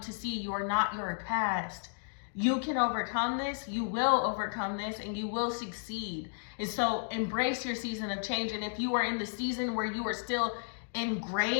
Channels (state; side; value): silent; right; digital silence